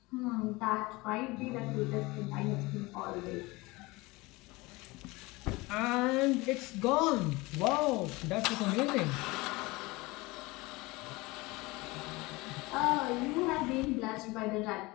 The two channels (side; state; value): right; quieter; 22.6 dB